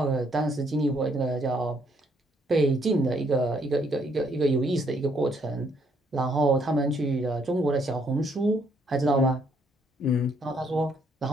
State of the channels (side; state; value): both; normal; correlation 0.69